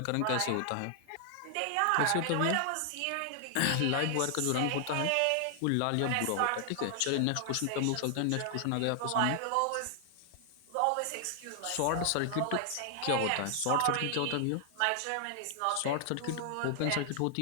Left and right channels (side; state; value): both; different; correlation 0.00